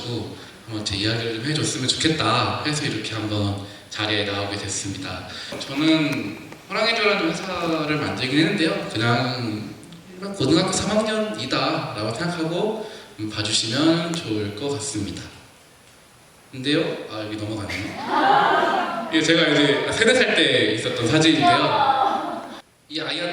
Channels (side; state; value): both; identical; correlation 1.00